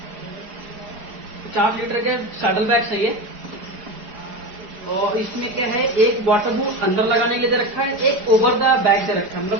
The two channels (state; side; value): late; left; 4.9 ms